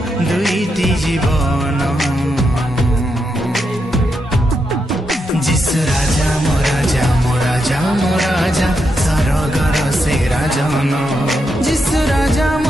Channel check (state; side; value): normal; both; correlation 0.83